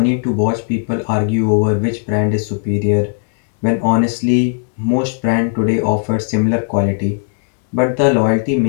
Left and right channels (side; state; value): right; silent; digital silence